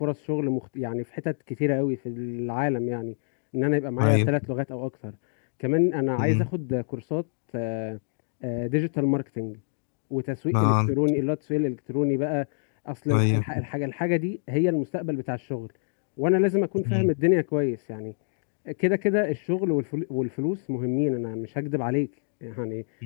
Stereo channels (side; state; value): right; silent; digital silence